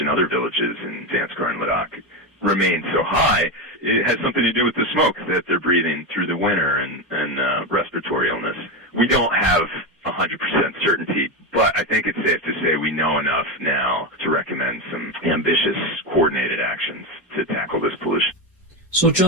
other villages in Zanskar and Ladakh remain so high, it has something to do with the smoke that they're breathing through the winter and respiratory illness. We don't have 100% certainty, but I think it's safe to say we know enough now to recommend some ambitious, coordinated actions to tackle this pollution. So,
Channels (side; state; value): both; normal; correlation 0.14